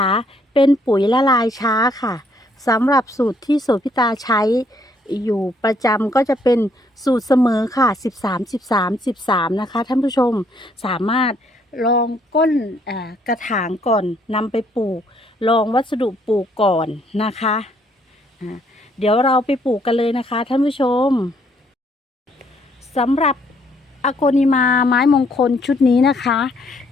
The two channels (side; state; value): both; normal; correlation 0.68